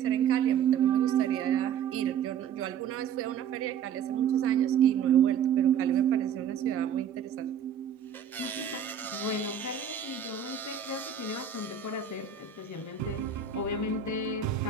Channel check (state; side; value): quieter; left; 8.0 dB